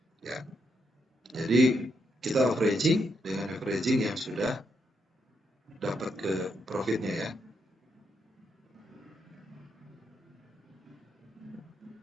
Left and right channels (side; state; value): both; normal; correlation 0.79